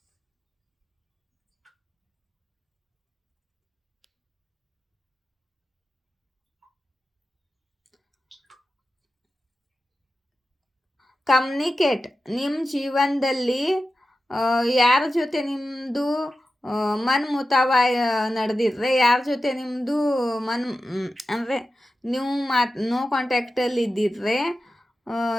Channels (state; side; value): normal; both; correlation 0.93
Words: ಕಮ್ಯುನಿಕೇಟ್, ನಿಮ್ಮ ಜೀವನದಲ್ಲಿ ಯಾರ ಜೊತೆ ನಿಮ್ಮದು ಮನ್ಮುತಾವ ನಡೆದಿದ್ರೆ, ಯಾರ ಜೊತೆ ನಿಮ್ಮದು ಅಂದರೆ ನೀವು ನೋ ಕಾಂಟ್ಯಾಕ್ಟಲ್ಲಿ ಇದ್ದಿದ್ರೆ,